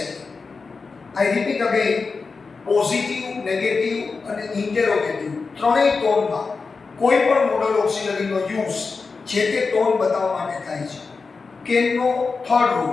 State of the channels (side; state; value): right; quieter; 4.5 dB